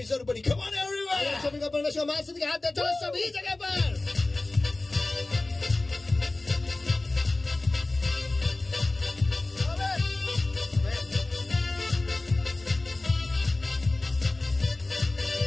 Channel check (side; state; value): right; quieter; 3.0 dB